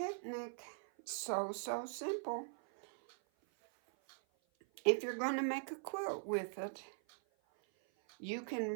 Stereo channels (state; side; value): silent; left; 50 dB below the other